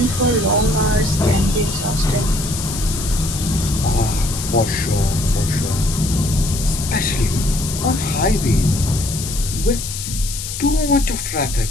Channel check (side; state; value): left; noise; hiss, 7 dB below the sound